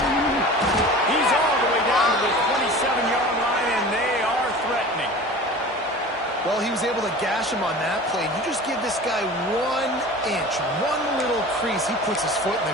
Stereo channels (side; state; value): both; normal; correlation 0.38